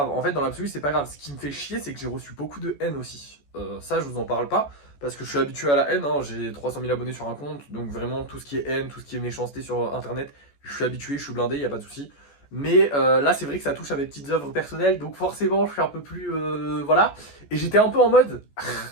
En fait, dans l'absolu, c'est pas grave. Ce qui me fait chier, c'est que j'ai reçu beaucoup de haine aussi. Ça, je vous en parle pas, parce que je suis habitué à la haine. Hein. J'ai 300 000 abonnés sur un compte, donc vraiment, tout ce qui est haine, tout ce qui est méchanceté sur Internet, je suis habitué, je suis blindé, y a pas de souci. Mais là, c'est vrai que ça touche à mes petites œuvres personnelles, donc forcément, je suis un peu plus... voilà. Et j'étais un peu en mode,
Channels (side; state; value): right; late; 14 ms